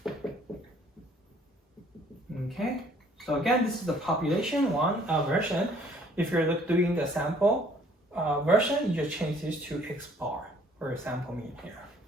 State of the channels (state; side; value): normal; both; correlation 0.59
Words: Okay, so again, this is the population one version. If you're doing the sample version, you just change this to x bar for sample mean here.